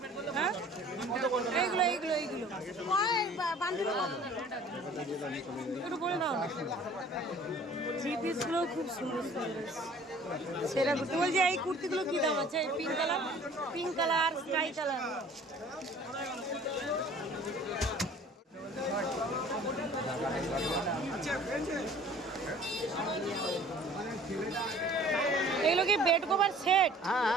হ্যাঁ, এইগুলো একটু বলে দাও না। থ্রি পিসগুলো খুব সুন্দর সুন্দর, সেরা কুর্তি। বলছি এই কুর্তিগুলো কি দাম আছে? Pink colour, sky colour. এগুলো কি বেড কভার সেট?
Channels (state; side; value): normal; both; correlation 0.50